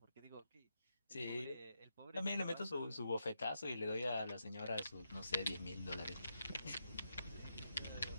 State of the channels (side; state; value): both; inverted; correlation -0.83